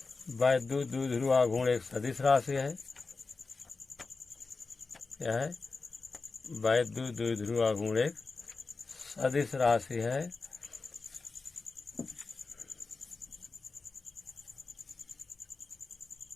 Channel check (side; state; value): right; quieter; 4.1 dB